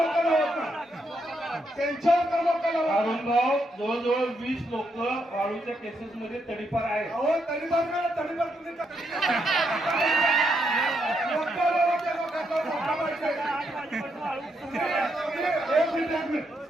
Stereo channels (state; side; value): normal; both; correlation 0.79